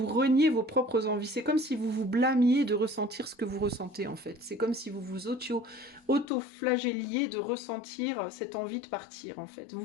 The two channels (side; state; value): right; drops out; at 6.2 s